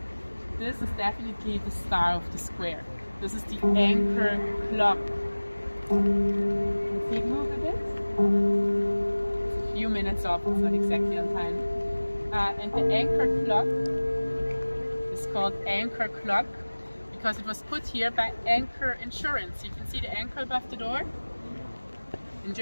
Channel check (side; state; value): both; inverted; correlation -1.00